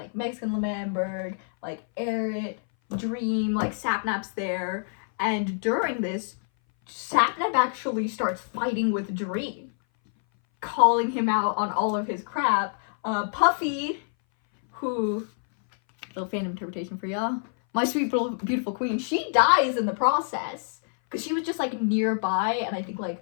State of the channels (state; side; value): silent; right; 59 dB below the other